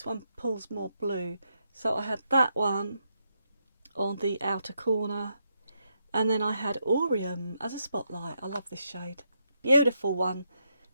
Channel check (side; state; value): both; inverted; correlation -0.80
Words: one pulls more blue. So I had that one on the outer corner, and then I had Aureum as a spotlight. I love this shade. Beautiful one.